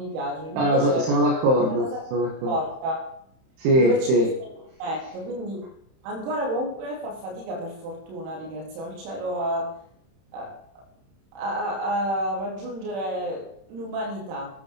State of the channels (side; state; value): left; late; 31 ms